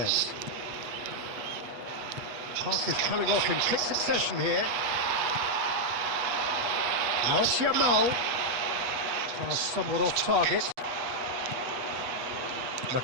Pass is coming off in quick succession here. Now it's Yamal. Pass somewhat off target.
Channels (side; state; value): left; late; 8.2 ms